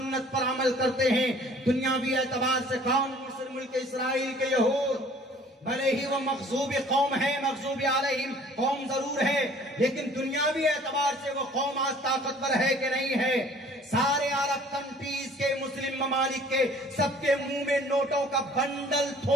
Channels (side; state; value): both; normal; correlation 0.53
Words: पर अमल करते हैं। दुनियावी एतबार से कौन? मिस्र मुल्क इस्राइल के यहूद, भले ही वो मग़ज़ूब कौम है, मग़ज़ूब अलैहिम कौम जरूर है, लेकिन दुनियावी एतबार से वो कौम आज ताकतवर है कि नहीं है? सारे अरब कंट्रीज के, मुस्लिम ममालिक के, सबके मुंह में नोटों का बंडल